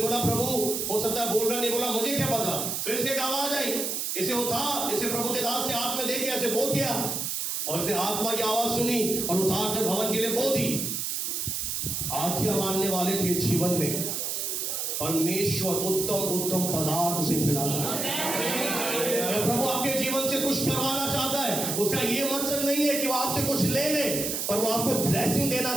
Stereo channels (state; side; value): noise; right; hiss, 2 dB below the sound